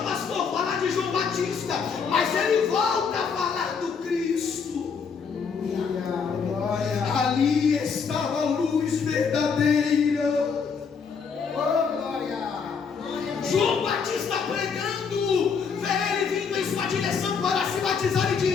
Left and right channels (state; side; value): quieter; right; 5.9 dB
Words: pastor, falar de João Batista, mas ele volta a falar do Cristo. Glória. Ali estava a luz verdadeira. Oh, glória. João Batista pregando, vê ele vindo em sua direção para se batizar e